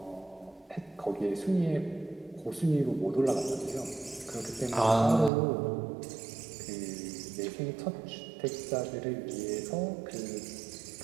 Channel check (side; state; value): left; drops out; at 5.3 s